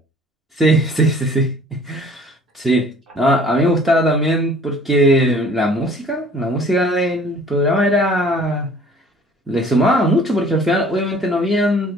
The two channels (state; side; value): normal; both; correlation 0.52